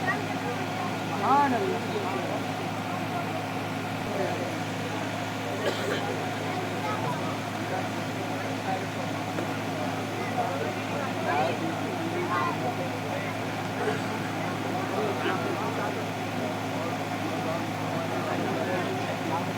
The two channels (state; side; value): identical; both; correlation 1.00